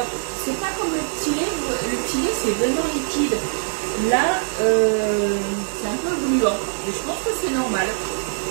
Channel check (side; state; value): left; silent; 57 dB below the other